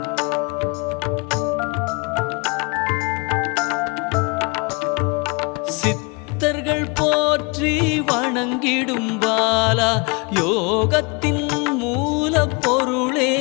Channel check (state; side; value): quieter; right; 30.2 dB